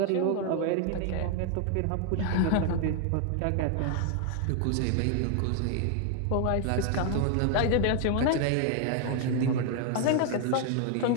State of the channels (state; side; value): different; both; correlation 0.00